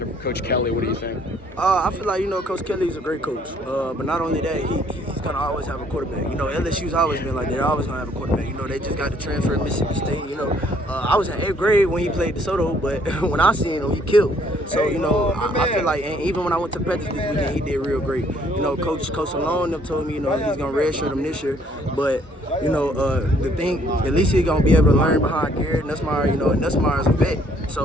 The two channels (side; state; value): both; normal; correlation 0.64